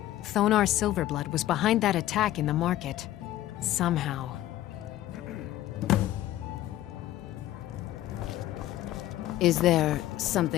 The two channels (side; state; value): right; quieter; 14.1 dB